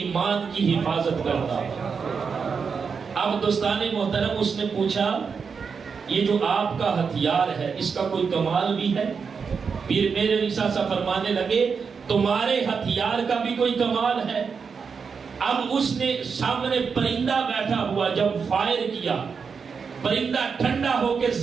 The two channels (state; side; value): quieter; left; 5.7 dB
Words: کی حفاظت کرتا ہے۔ اب دوستان محترم، اس نے پوچھا یہ جو آپ کا ہتھیار ہے اس کا کوئی کمال بھی ہے؟ پیر مہر علی شاہ صاحب فرمانے لگے تمہارے ہتھیار کا بھی کوئی کمال ہے؟ اب اس نے سامنے پرندہ بیٹھا ہوا جب فائر کیا، پرندہ ٹھنڈا ہو کے